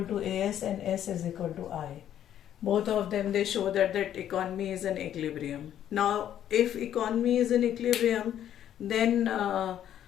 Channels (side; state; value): right; quieter; 10.7 dB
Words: to AS and S is equal to I. Both of them, they show that economy is in equilibrium. Now if economy is in equilibrium, then